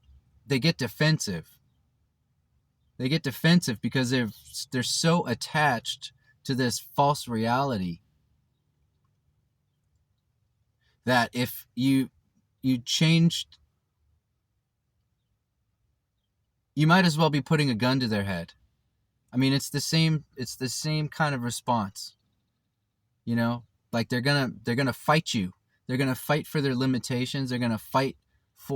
get defensive. They get defensive because they're so attached to this false reality that if you changed, you might as well be putting a gun to their head. I mean, it's the same kind of response. You know, like they're gonna fight you. They're gonna fight for their limitations. They're gonna fight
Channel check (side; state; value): both; identical; correlation 1.00